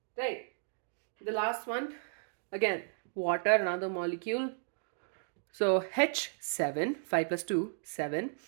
right? The last one, again, water, another molecule. So H7, 5 plus 2, 7.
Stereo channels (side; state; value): left; silent; digital silence